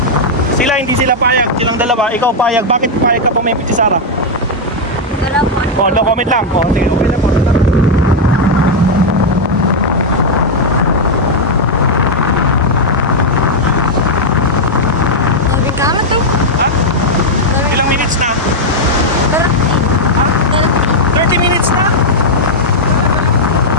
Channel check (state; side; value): normal; both; correlation -0.01